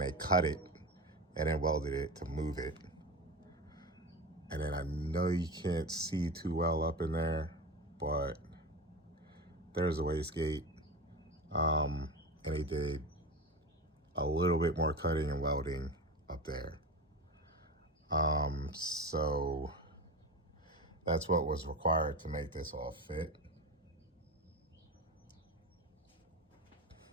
cut it and then welded it to move it. And then I know you can't see too well up in there, but there's a wastegate. And they did a little bit more cutting and welding up there. So that's what was required to make this all fit.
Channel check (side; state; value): both; normal; correlation 0.26